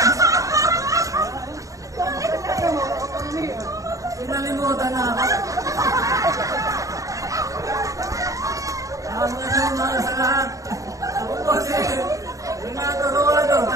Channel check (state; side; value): late; left; 0.16 ms